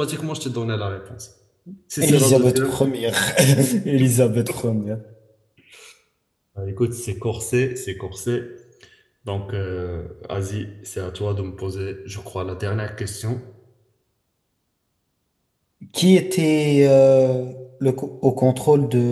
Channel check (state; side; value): identical; both; correlation 1.00